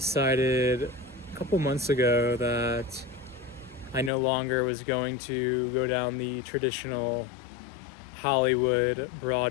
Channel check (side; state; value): right; drops out; at 4.1 s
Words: a couple months ago that I no longer was going to go down the traditional Hollywood,